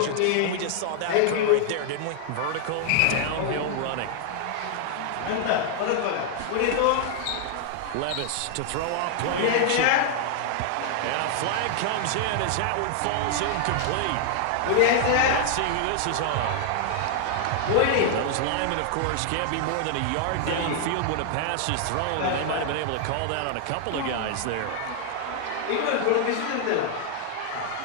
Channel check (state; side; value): different; both; correlation 0.00